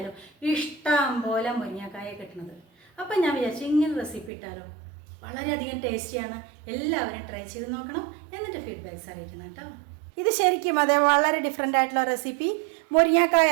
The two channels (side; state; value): left; drops out; at 4.3 s